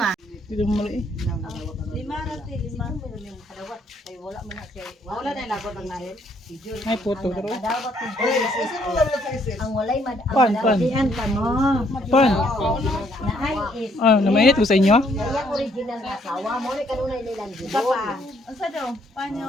Dito mo mali eh. 5 rati, 5. Wala na lagot ang nahin. Ay puto pero. Ang walay Pan. ka mo. Pan. Na ay is Ah, namainit ko sa inyo? kaya original na asawa mo ni kanunay nilang Isa gibo. pa. Asa daw? Panyo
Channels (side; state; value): both; normal; correlation 0.68